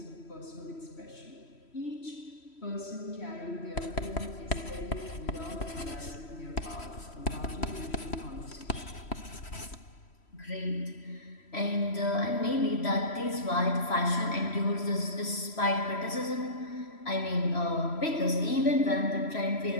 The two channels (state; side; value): late; right; 3.1 ms